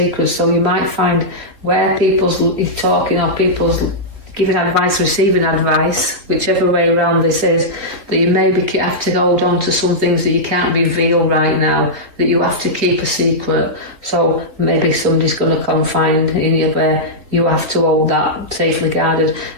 So you might find where people's talking or people's giving advice, receiving advice, whichever way around this is, that you maybe have to hold on to some things that you can't reveal right now, that you have to keep a secret. So maybe somebody's going to confide in you where you have to hold that safely guarded.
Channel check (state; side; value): late; left; 3.4 ms